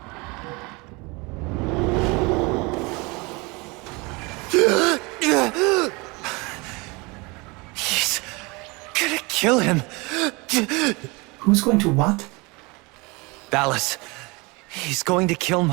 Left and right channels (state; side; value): quieter; left; 26.5 dB